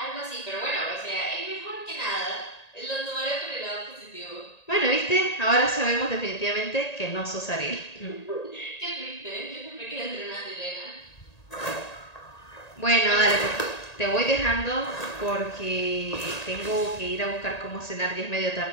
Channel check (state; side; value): late; right; 1.8 ms